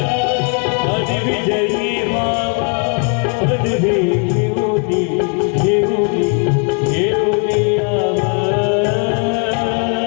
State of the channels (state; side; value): quieter; right; 37.1 dB